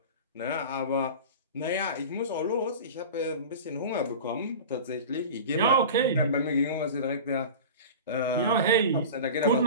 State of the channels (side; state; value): both; inverted; correlation -0.33